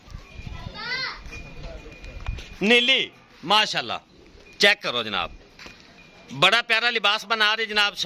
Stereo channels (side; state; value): both; identical; correlation 1.00